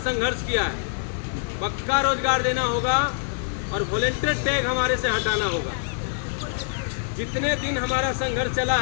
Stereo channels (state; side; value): silent; right; digital silence